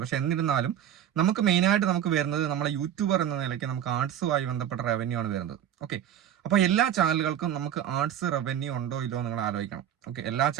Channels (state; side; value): quieter; left; 10.2 dB